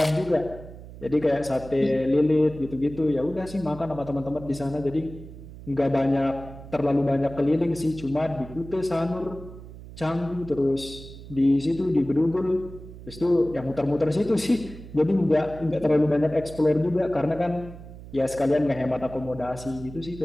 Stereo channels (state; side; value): noise; right; hum, 15 dB below the sound